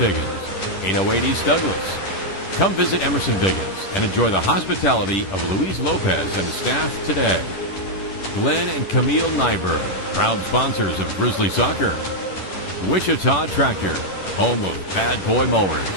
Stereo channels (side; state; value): right; late; 10 ms